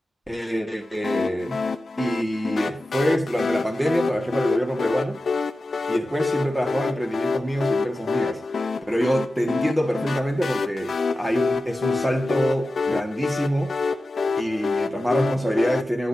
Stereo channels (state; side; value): normal; both; correlation 0.93